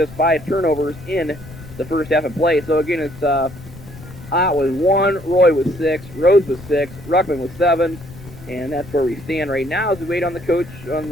5 turnovers in the first half of play. So again, it's Ott was 1, Roy was 6, Rhodes was 6, Ruckman was 7, and that's where we stand right now as we wait on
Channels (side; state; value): left; noise; rumble, 16 dB below the sound